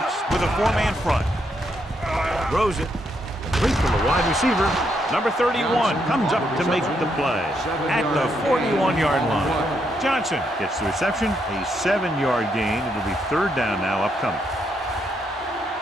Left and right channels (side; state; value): both; normal; correlation 0.77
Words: with a 4-man front. Throws it. Complete from the wide receiver. Number 31 comes up to make the play at the 41-yard line. Johnson gets the reception, a 7-yard gain. It'll be 3rd down now upcoming.